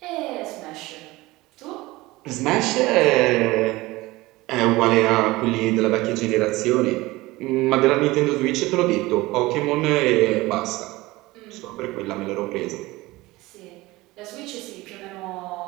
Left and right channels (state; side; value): quieter; left; 20.0 dB